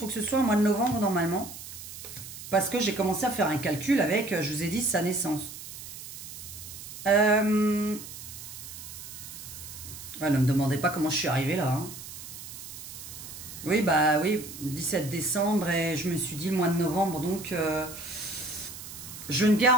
que ce soit au mois de novembre, normalement. Parce que j'ai commencé à faire un calcul avec, je vous ai dit, sa naissance. Ouais, ne me demandez pas comment je suis arrivée là. Hein. Oui, bah oui, 17 décembre et je me suis dit le mois de novembre, donc je ne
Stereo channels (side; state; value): right; noise; hiss, 12 dB below the sound